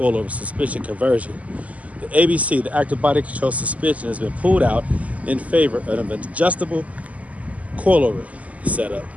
suspension conversion. The ABC, the active body control suspension, has been pulled out in favor of an adjustable coilover setup.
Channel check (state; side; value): late; left; 0.072 ms